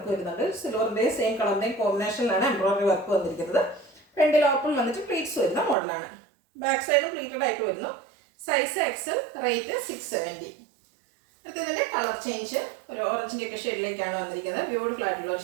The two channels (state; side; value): drops out; left; at 5.8 s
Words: വരുന്നുണ്ട്. സിൽവറിൻ്റെയും സെയിം കളറിൻ്റെയും കോമ്പിനേഷനിലാണ് എംബ്രോയിഡറി വർക്ക് വന്നിരിക്കുന്നത്. ഫ്രണ്ടിൽ ഓപ്പൺ വന്നിട്ട് പ്ലീറ്റ്സ് വരുന്ന മോഡലാണ്. ബാക്ക് സൈഡും പ്ലീറ്റഡ് ആയിട്ട് വരുന്നു. Size XL, rate 670. അടുത്തതിൻ്റെ കളർ ചേഞ്ച് ഒരു ഓറഞ്ചിൻ്റെ ഒക്കെ ഷെയ്ഡിലേക്കാണ് വന്നിരിക്കുന്നത്. ബ്യൂട്ടിഫുൾ ആയിട്ടുള്ള ഒരു